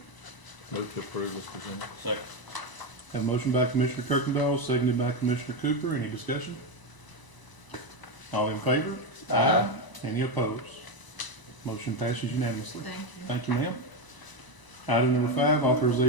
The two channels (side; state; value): right; late; 1.0 ms